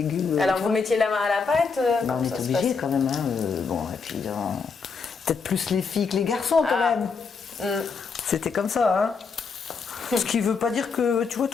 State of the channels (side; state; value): right; quieter; 5.1 dB